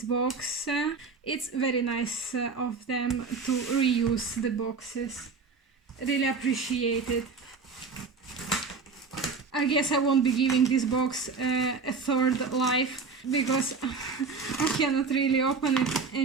box. It's very nice of them to reuse the boxes. Really appreciate it. I guess I won't be giving this box a third life because I cannot really open it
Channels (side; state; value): left; quieter; 4.7 dB